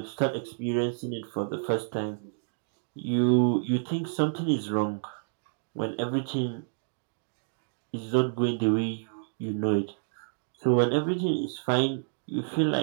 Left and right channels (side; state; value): left; silent; digital silence